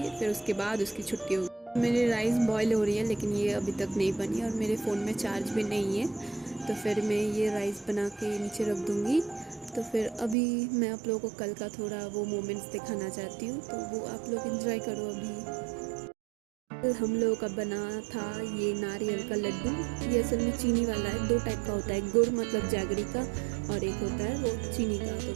फिर उसके बाद उसकी छुट्टी होगी। मेरी राइस बॉईल हो रही है लेकिन ये अभी तक नहीं बनी और मेरे फ़ोन में चार्ज भी नहीं है, तो फिर मैं ये राइस बना के नीचे रख दूँगी। तो फिर अभी मैं आप लोगों को कल का थोड़ा वो मोमेंट्स दिखाना चाहती हूँ, तो वो आप लोग एंजॉय करो। अभी हम लोगों का बना था ये नारियल का लड्डू। ये असल में चीनी वाला है, 2 टाइप का होता है, गुड़ मतलब जैगरी का, और एक होता है वो चीनी का। तो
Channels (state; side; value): drops out; left; at 10.4 s